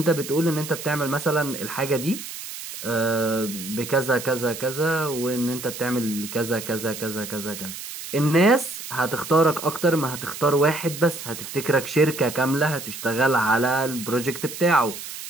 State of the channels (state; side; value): noise; right; hiss, 10 dB below the sound